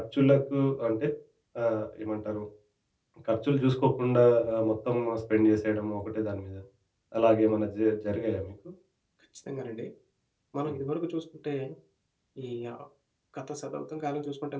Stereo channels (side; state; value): both; identical; correlation 1.00